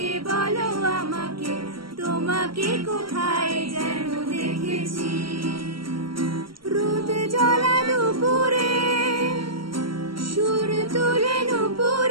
বলো আমাকে তোমাকে কোথায় যেন দেখেছি রোদ জ্বলা দুপুরে সুর তুলে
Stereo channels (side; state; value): left; late; 0.74 ms